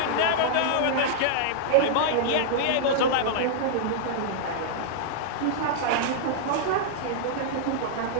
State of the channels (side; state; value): both; different; correlation -0.01